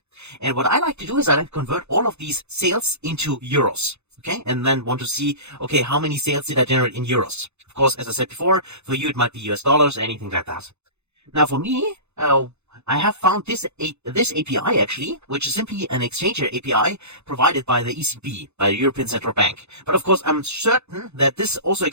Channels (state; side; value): late; left; 0.81 ms